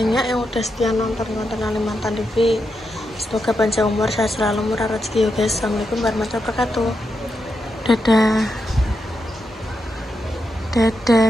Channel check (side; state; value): both; normal; correlation 0.85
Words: yang udah setia nonton konten Kalimantan TV. Semoga panjang umur, sehat selalu, murah rezeki ya guys. Assalamualaikum warahmatullahi wabarakatuh. Dadah. Dadah